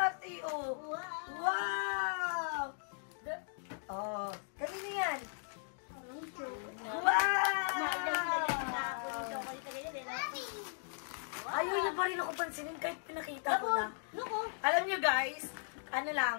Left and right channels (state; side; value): silent; right; digital silence